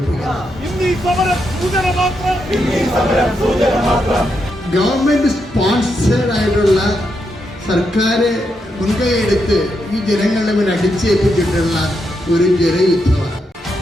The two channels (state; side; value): normal; both; correlation 0.82